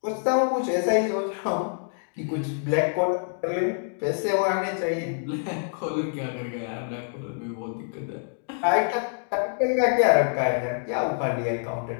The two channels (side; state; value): right; silent; digital silence